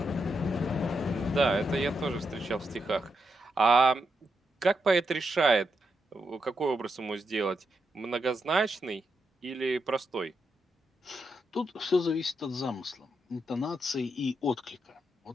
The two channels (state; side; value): normal; both; correlation 0.83